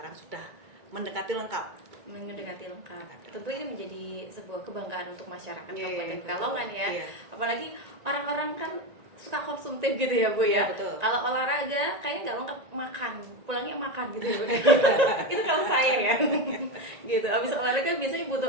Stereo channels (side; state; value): left; late; 1.9 ms